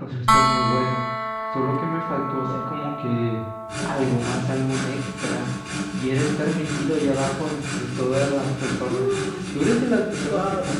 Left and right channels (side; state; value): both; identical; correlation 1.00